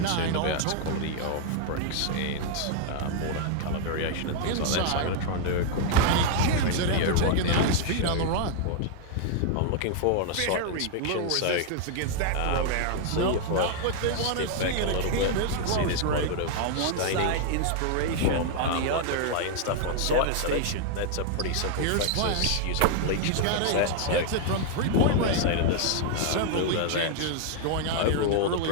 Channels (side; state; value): both; different; correlation -0.01